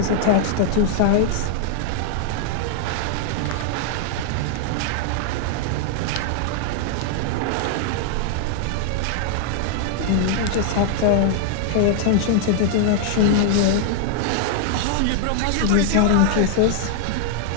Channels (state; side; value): different; both; correlation -0.01